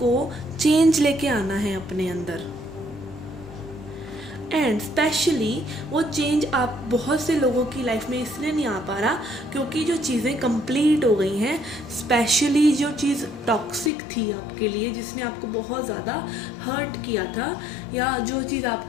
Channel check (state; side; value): drops out; right; at 13.9 s